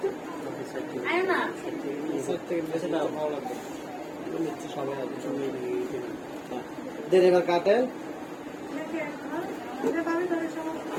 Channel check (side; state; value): both; identical; correlation 1.00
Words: দেন এবার কাটেন।